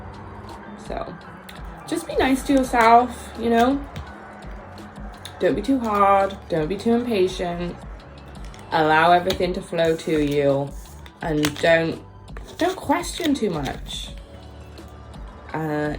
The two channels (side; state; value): both; identical; correlation 1.00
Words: So just be nice to yourself, you know? Don't be too hard. Don't be too impatient. Allow everything to flow to you. And don't question too much.